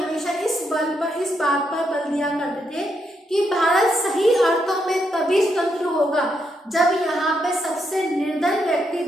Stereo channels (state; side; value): normal; both; correlation 0.79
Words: इस बात पर बल दिया करते थे कि भारत सही अर्थों में तभी स्वतंत्र होगा जब यहाँ पे सबसे निर्धन व्यक्ति